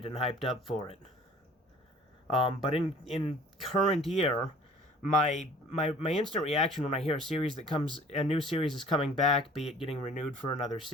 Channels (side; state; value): both; normal; correlation 0.50